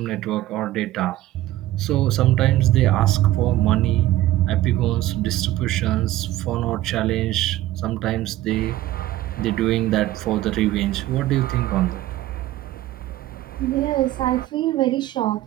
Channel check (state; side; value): quieter; left; 15.0 dB